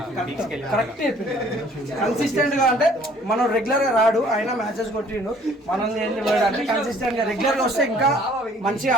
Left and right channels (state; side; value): normal; both; correlation 0.57